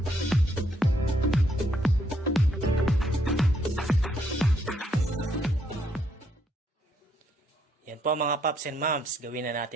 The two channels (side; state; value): both; normal; correlation 0.72